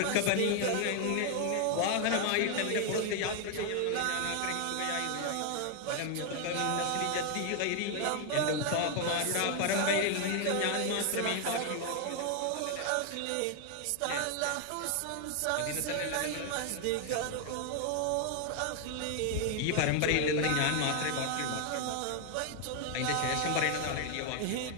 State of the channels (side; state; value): both; different; correlation 0.00